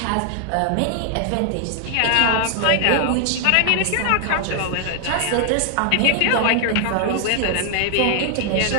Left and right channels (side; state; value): both; different; correlation 0.00